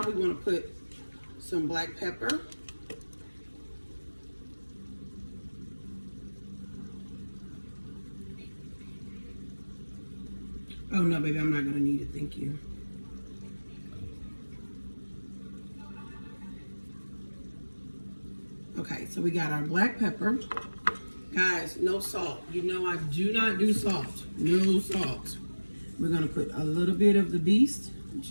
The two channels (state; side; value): inverted; both; correlation -1.00